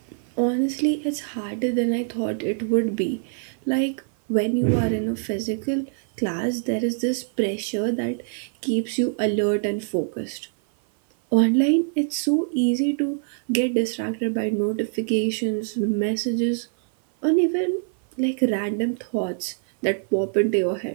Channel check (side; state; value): left; silent; 56 dB below the other